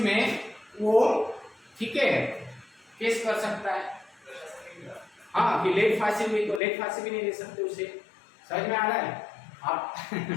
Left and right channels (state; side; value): drops out; right; at 6.6 s